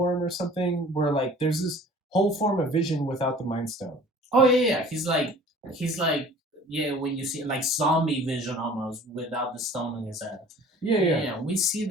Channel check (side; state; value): both; normal; correlation 0.47